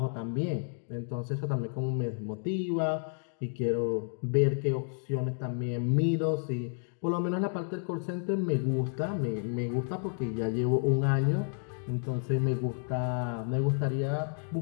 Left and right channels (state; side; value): silent; right; 57 dB below the other